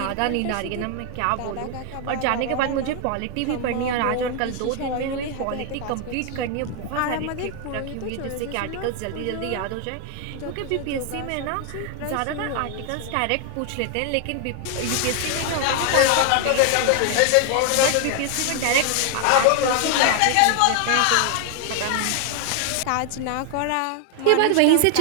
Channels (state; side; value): different; both; correlation 0.00